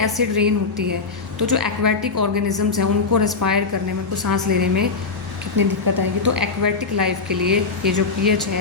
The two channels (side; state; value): right; quieter; 4.4 dB